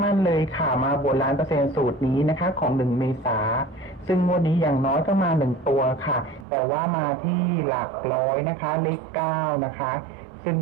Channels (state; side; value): drops out; left; at 6.5 s